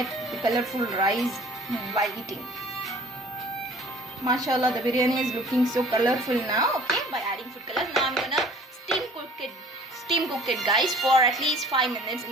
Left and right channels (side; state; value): both; normal; correlation 0.51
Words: the colorful rice while eating. Mashallah, the biryani is looking so colorful now. Okay, by adding food color. Now I'm gonna steam cook it guys for at least 5 minutes in